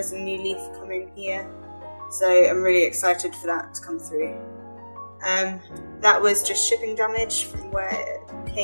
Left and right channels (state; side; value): inverted; both; correlation -1.00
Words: a new leaf coming here, so I'm really excited for that to come through. That was just shipping damage from where it